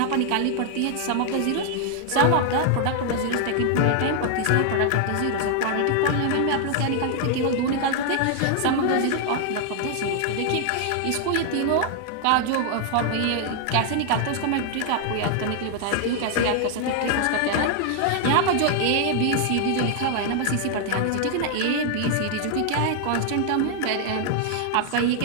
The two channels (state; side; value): different; both; correlation 0.00